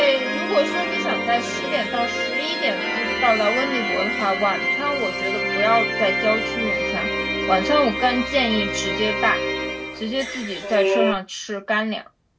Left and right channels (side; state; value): both; identical; correlation 1.00